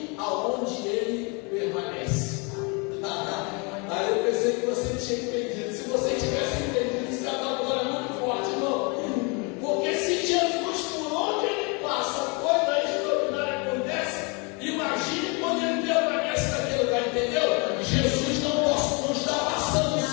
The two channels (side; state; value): right; quieter; 31.6 dB